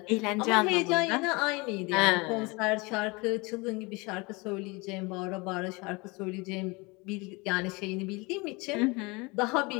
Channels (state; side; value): quieter; right; 26.4 dB